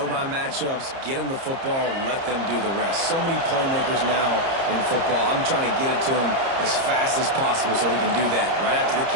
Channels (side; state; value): left; late; 30 ms